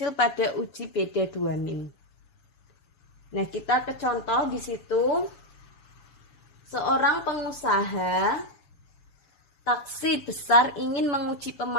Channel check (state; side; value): late; right; 7.1 ms